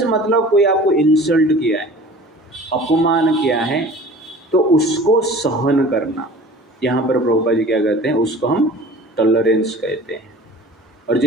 मतलब कोई आपको इंसल्ट किया है, अपमान किया है, तो उसको सहन करना। यहाँ पर प्रभुपाद जी क्या कहते हैं? उसको हम टॉलरेंस कहते हैं। और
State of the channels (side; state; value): both; normal; correlation 0.43